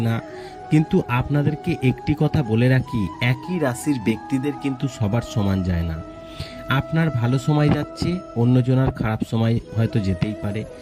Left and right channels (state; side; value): identical; both; correlation 1.00